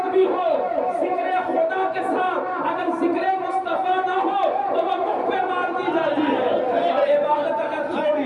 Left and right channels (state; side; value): identical; both; correlation 1.00